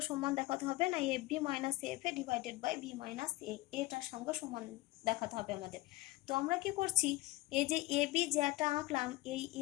সমান দেখাতে হবে না, f b minus f a divided by b minus a, এটার সঙ্গে সমান দেখাতে হবে আমাদের। তো আমরা কি করছি, এই যে এ বি জ্যাটা আঁকলাম, এই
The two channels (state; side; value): quieter; right; 19.3 dB